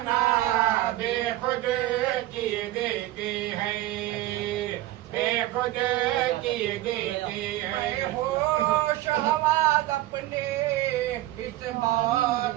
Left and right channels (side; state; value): left; quieter; 16.1 dB